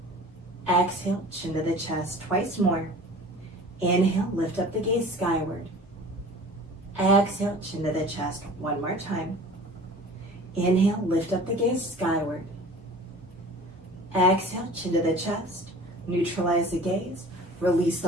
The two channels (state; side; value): normal; both; correlation 0.43